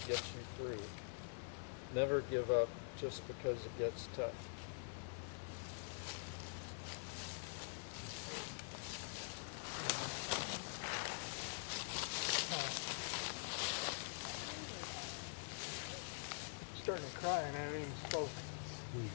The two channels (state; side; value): silent; right; digital silence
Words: gets you through, Never give up just because it gets tough. Starting to cry and I haven't even spoke.